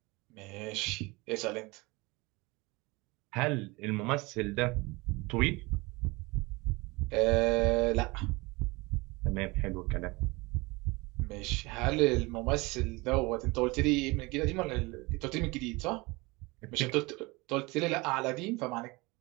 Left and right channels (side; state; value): left; quieter; 24.2 dB